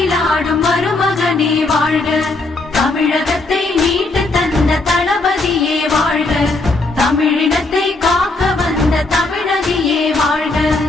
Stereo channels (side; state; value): right; quieter; 3.3 dB